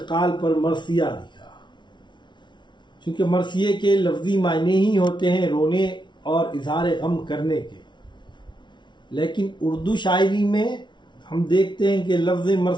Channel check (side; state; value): right; late; 0.23 ms